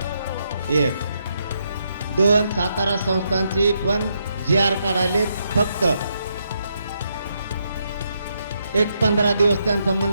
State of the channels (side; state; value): both; inverted; correlation -0.79